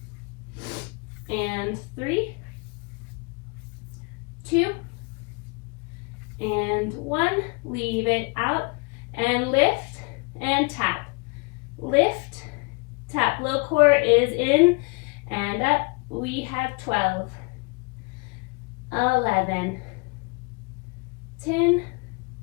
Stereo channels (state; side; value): quieter; right; 30.8 dB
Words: and 3, 2, and 1. Leave it out and lift and tap. Lift, tap. Low core is in and up. We have 12, 11, 10,